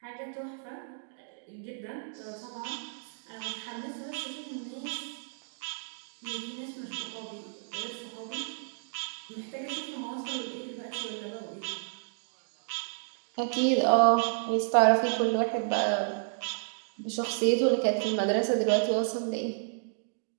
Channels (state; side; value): silent; left; digital silence